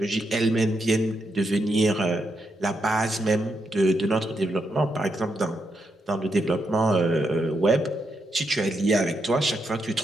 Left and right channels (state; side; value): normal; both; correlation 0.81